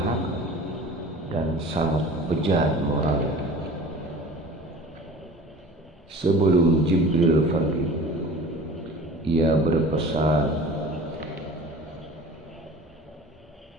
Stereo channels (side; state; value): both; normal; correlation 0.41